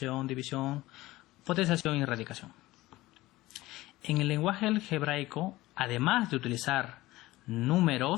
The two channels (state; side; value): quieter; right; 18.1 dB